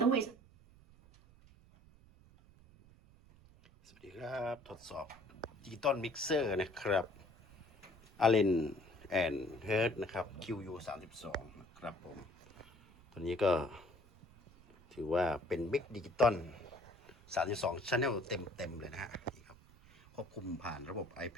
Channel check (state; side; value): noise; right; rumble, 24 dB below the sound